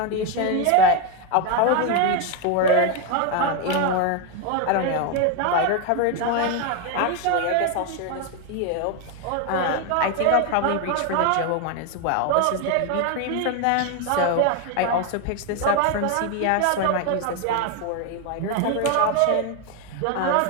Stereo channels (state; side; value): different; both; correlation 0.01